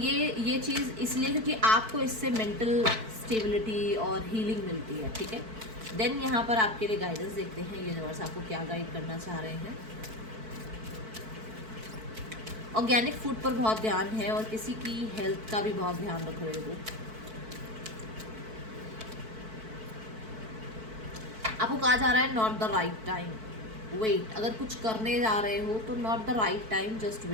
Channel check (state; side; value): late; left; 4.5 ms